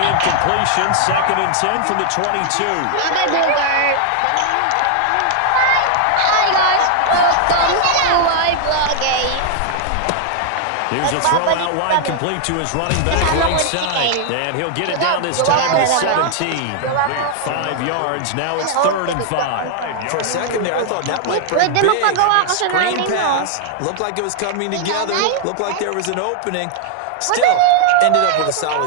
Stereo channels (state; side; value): different; both; correlation -0.01